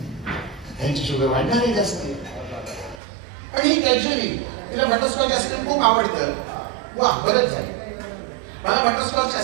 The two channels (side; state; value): left; drops out; at 3.0 s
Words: त्यांची शुगर वाढणार आहे जास्त. आणि ही कॅज्युअली तिला बटरस्कॉच आईस्क्रीम खूप आवडतं. वा, बरंच झालं. मला बटरस्कॉच